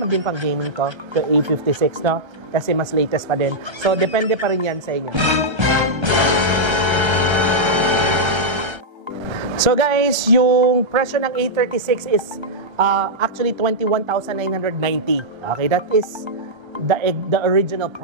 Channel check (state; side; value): late; left; 1.3 ms